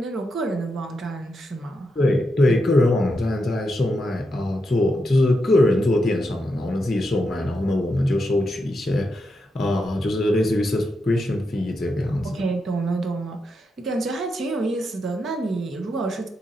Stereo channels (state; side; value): normal; both; correlation 0.84